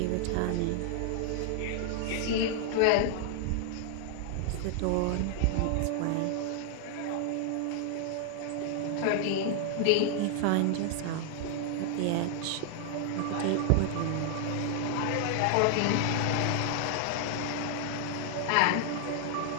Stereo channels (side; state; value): both; different; correlation 0.00